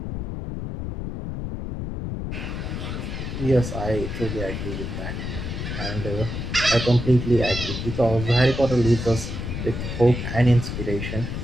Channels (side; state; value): left; noise; rumble, 5 dB below the sound